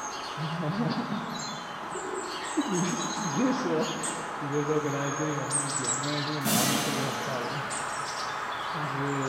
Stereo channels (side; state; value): both; identical; correlation 1.00